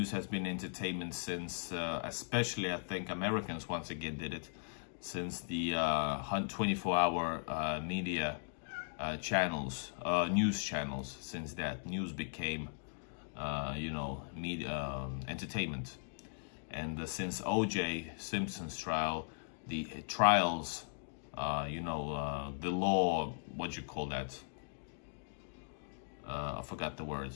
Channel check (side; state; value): right; silent; digital silence